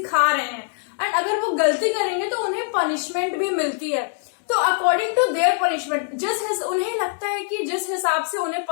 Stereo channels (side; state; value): right; silent; 62 dB below the other